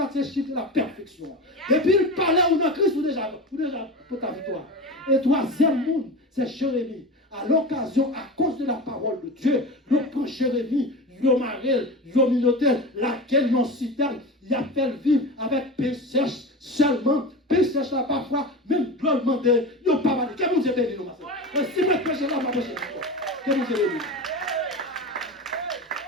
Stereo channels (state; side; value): normal; both; correlation 0.27